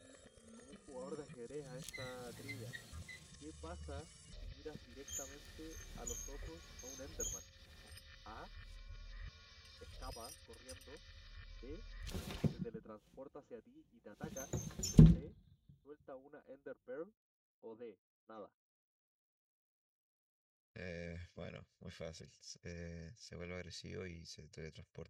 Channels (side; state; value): both; identical; correlation 1.00